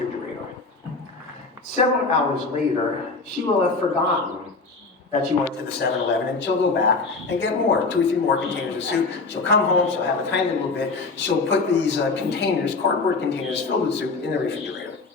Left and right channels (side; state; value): right; quieter; 3.9 dB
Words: Several hours later, she will have forgotten that she went to the 7-Eleven, and she'll go back and get more, 2 or 3 more containers of soup. She'll come home, she'll have a tiny little bit, she'll put these containers, cardboard containers filled with soup in the refrigerator.